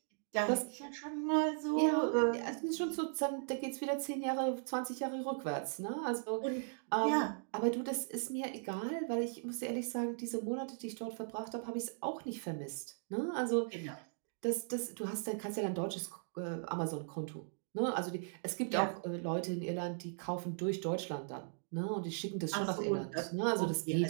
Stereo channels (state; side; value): silent; left; digital silence